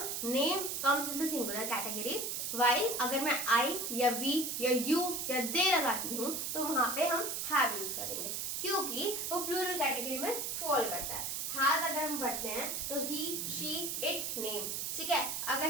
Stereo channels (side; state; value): right; noise; hiss, 2 dB below the sound